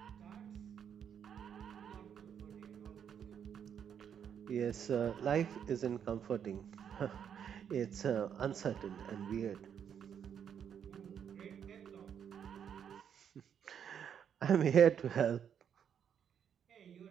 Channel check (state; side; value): quieter; left; 8.3 dB